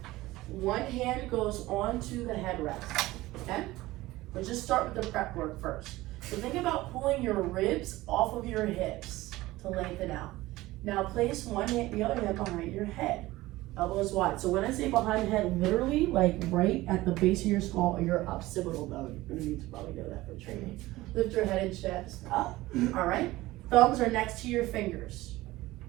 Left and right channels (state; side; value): quieter; left; 18.2 dB